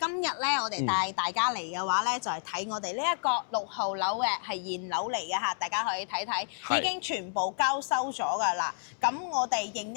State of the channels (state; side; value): silent; right; digital silence